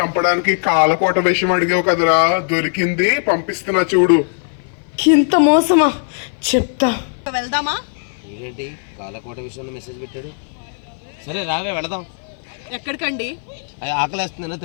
కాలకోట విషయం అడిగావు కదరా, దొరికింది, పంపిస్తున్నా చూడు. ఇంత మోసమా? చెప్తా. వెళ్దామా? ఏంటి కాలకోట విషయంలో మెసేజ్ పెట్టాడు? సరే రావే వెళదాం. ఎక్కడికండి? అది ఆకలేస్తుందనే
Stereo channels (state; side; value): silent; right; 57 dB below the other